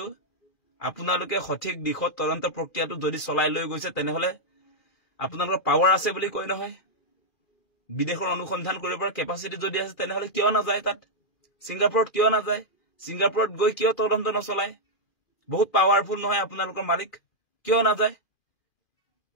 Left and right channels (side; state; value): right; late; 2.4 ms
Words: আপোনালোকে সঠিক দিশত তদন্ত প্ৰক্ৰিয়াটো যদি চলাই লৈ গৈছে তেনেহলে আপোনালোকৰ পাৱাৰ আছে বুলি কয় নহয় বিদেশৰ অনুসন্ধান কৰিবৰ কেপাসিটি যদি আছে তেনেহলে কিয় নাযায় তাত সিঙ্গাপুৰত কিয় নাযায় সিঙ্গাপুৰত গৈ কিয় তদন্ত নচলায় বহুত পাৱাৰফুল নহয় আপোনালোকৰ মালিক কিয় নাযায়